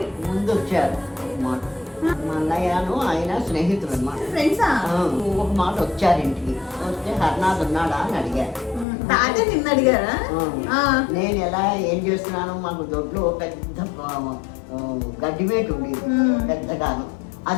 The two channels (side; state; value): right; drops out; at 8.8 s